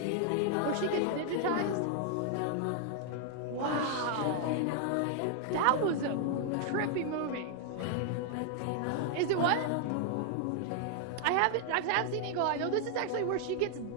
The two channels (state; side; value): different; both; correlation 0.00